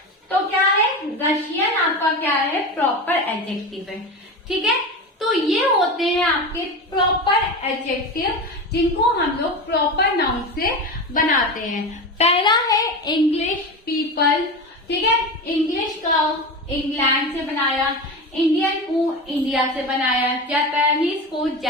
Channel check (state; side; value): normal; both; correlation 0.24